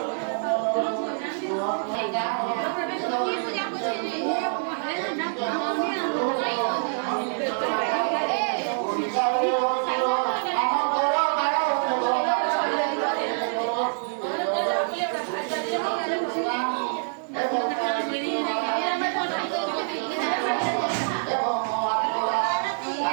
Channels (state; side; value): silent; left; 61 dB below the other